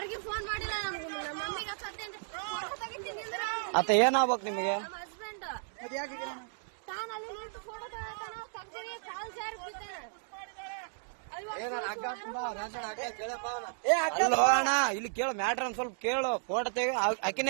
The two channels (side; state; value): left; silent; digital silence